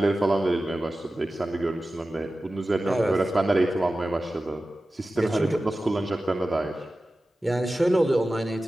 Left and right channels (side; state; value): both; normal; correlation 0.95